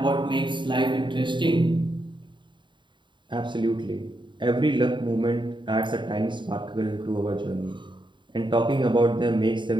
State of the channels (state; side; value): late; left; 0.23 ms